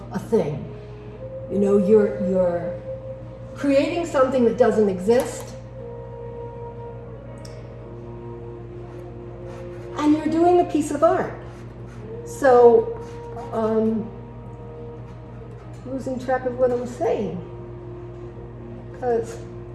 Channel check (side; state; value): both; identical; correlation 1.00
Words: a thing. You know, you're creating something that doesn't exist, and you're doing a piece of art. So, losing track of what I'm saying, because